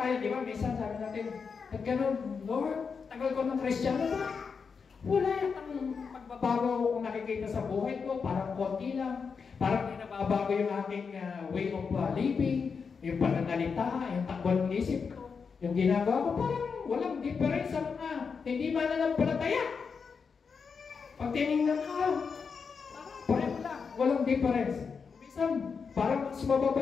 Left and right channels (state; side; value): quieter; right; 5.6 dB